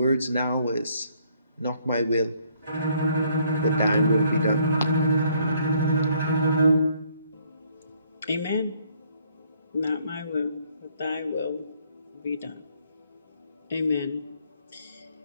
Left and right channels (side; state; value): both; inverted; correlation -0.66